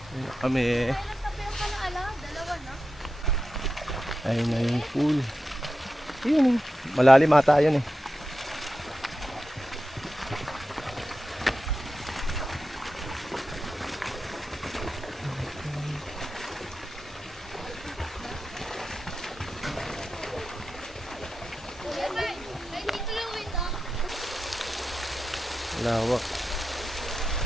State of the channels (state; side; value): normal; both; correlation 0.90